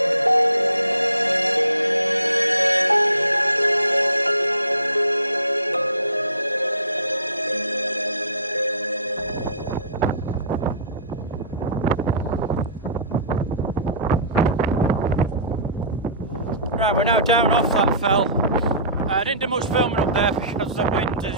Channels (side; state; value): both; inverted; correlation -0.43